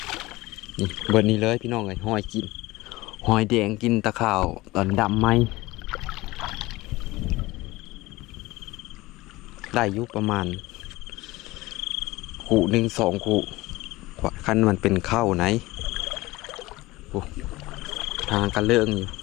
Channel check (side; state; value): right; quieter; 19.8 dB